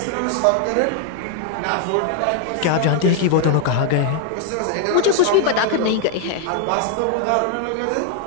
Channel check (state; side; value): different; both; correlation 0.00